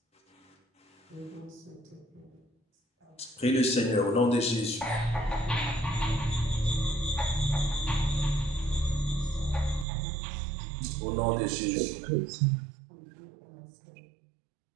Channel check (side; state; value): left; drops out; at 9.9 s